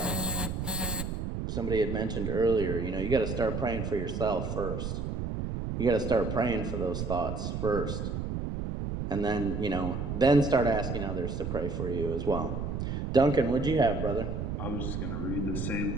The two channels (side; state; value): right; noise; rumble, 3 dB below the sound